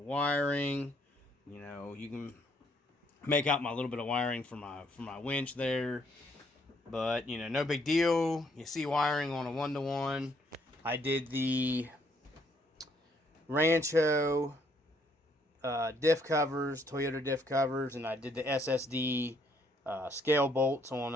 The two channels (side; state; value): both; normal; correlation 0.68